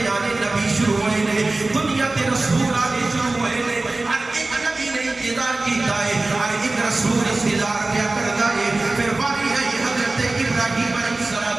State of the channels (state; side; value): quieter; left; 3.1 dB